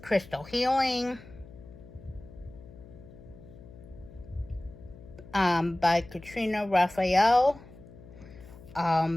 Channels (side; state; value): left; noise; hum, 19 dB below the sound